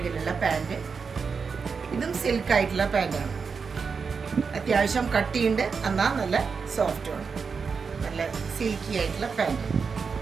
പാൻറ്. ഇതും സിൽക്കായിട്ടുള്ള പാൻറ്റാണ്. അത്യാവശ്യം കട്ടിയുണ്ട്, എന്നാൽ നല്ല സോഫ്റ്റുമാണ്. നല്ല സിൽക്കി ആയിട്ടുള്ള പാൻറ്.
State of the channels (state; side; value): quieter; left; 5.5 dB